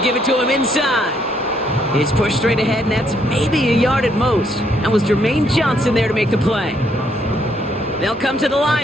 give it to him inside. He's pushed straight ahead, and that's maybe a yard at most. That was Jermaine Johnson there to make the play. They'll come to the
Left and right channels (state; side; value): normal; both; correlation 0.71